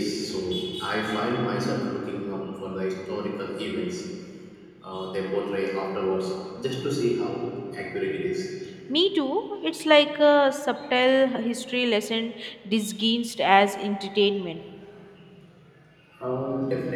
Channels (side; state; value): both; identical; correlation 1.00